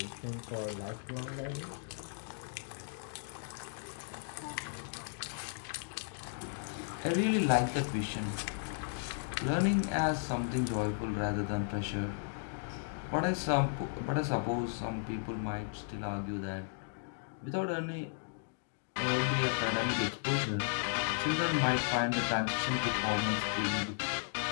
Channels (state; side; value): silent; right; digital silence